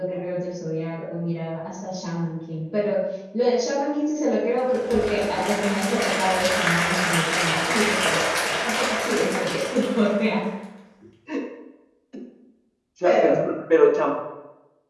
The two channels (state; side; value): identical; both; correlation 1.00